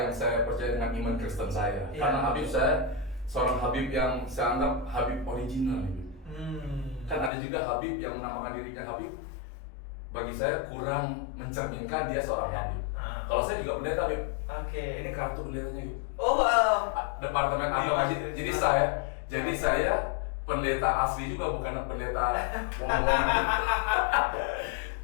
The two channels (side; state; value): right; drops out; at 7.3 s